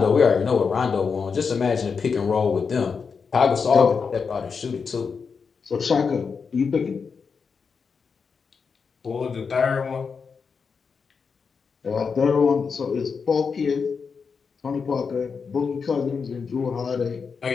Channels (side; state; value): right; quieter; 5.6 dB